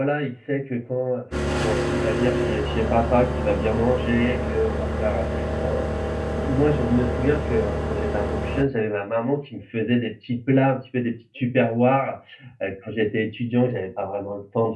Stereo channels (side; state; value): both; identical; correlation 1.00